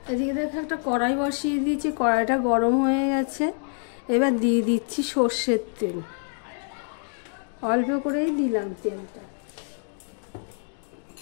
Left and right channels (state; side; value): silent; right; 61 dB below the other